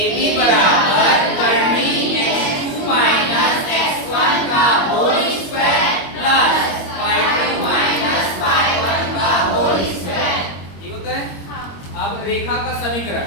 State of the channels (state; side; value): late; right; 21 ms